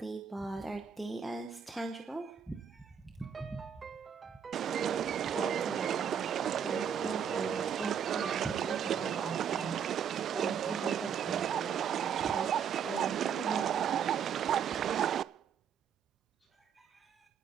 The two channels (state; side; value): quieter; left; 7.8 dB